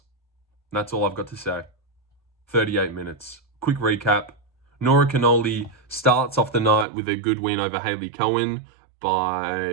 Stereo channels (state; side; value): drops out; left; at 6.9 s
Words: That's all I've got to say. 38 minutes. Quick recap. Nora Cornolle starts off the night with a good win over Hailey Cowan